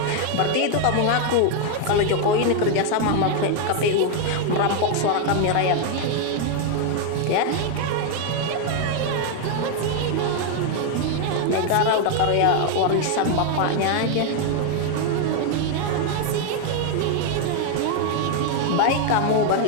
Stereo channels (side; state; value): both; different; correlation 0.00